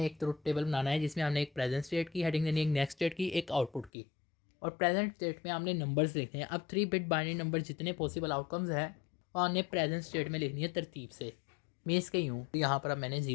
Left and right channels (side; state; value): right; drops out; at 3.9 s